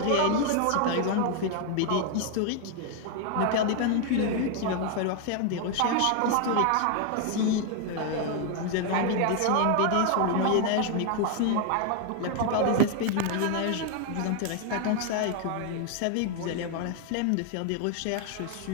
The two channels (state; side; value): different; both; correlation 0.00